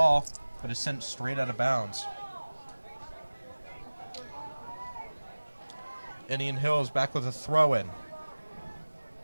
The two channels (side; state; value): both; inverted; correlation -1.00